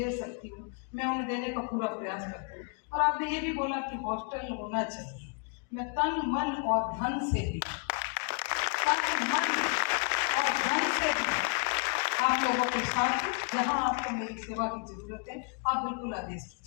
सकती हूँ, मैं उन्हें देने का पूरा प्रयास करती हूँ। और आपने ये भी बोला कि हॉस्टल होना चाहिए। मैं तन मन और धन से भी आप लोगों के साथ, जहां आपको मेरी सेवा की जरूरत है, आप बिल्कुल आदेश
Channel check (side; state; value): right; quieter; 36.6 dB